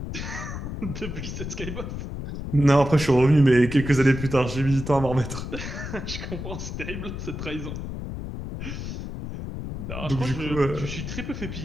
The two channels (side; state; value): left; noise; rumble, 7 dB below the sound